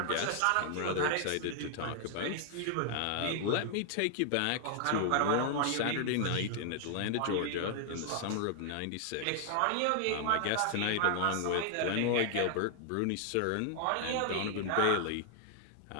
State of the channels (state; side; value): different; both; correlation 0.00